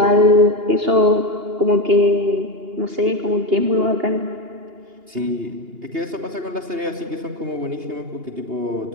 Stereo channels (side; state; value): left; late; 2.8 ms